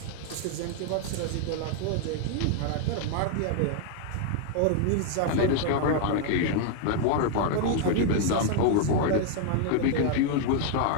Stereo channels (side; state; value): both; different; correlation 0.00